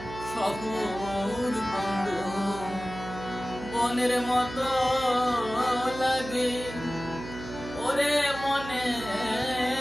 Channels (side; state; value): right; noise; hum, 11 dB below the sound